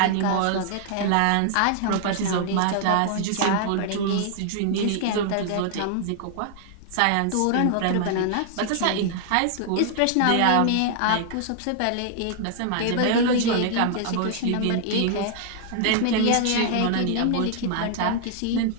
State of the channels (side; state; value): both; different; correlation 0.00